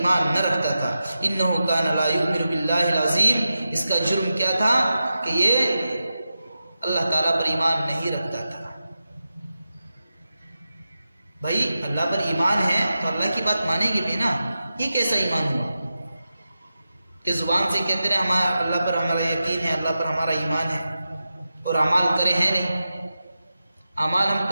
نہ رکھتا تھا۔ انہ کان لا یؤمن باللہ العظیم، اس کا جرم کیا تھا کہ یہ اللہ تعالیٰ پر ایمان نہیں رکھتا تھا۔ بھائی اللہ پر ایمان ہے تو اللہ کی بات مانیں گے بھی نا۔ یہ کیسا ایمان ہوا کہ زبان سے کہتے رہے ہمارا اللہ پر ہمارا یقین ہے، اللہ پر ہمارا ایمان ہے، اور اعمال کرے ہیں نہیں، اعمال ہم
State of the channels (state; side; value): inverted; both; correlation -0.92